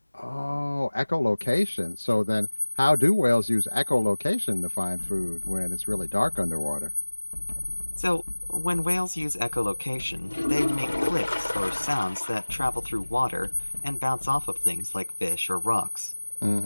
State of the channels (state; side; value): inverted; both; correlation -1.00